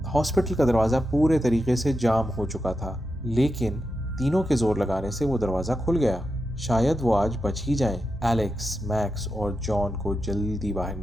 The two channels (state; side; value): normal; both; correlation 0.88